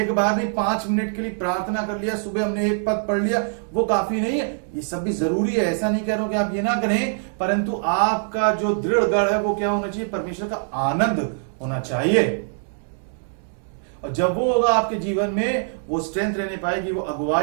बार नहीं, 5 मिनट के लिए प्रार्थना कर लिया, सुबह हमने एक पद पढ़ लिया, वो काफी नहीं है। ये सब भी जरूरी है, ऐसा नहीं कह रहा हूं कि आप ये ना करें, परंतु आपका जो दृढ़ गढ़ है वो क्या होना चाहिए? परमेश्वर का आनंद होना चाहिए। और जब वो होगा आपके जीवन में, वो स्ट्रेंथ रहने पाएगी, वो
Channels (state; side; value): silent; left; digital silence